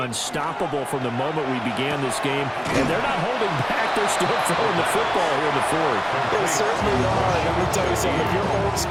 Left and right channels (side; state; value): both; identical; correlation 1.00